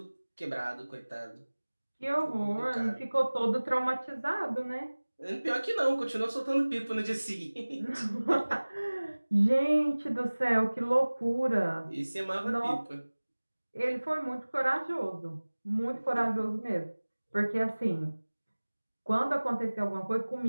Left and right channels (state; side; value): inverted; both; correlation -1.00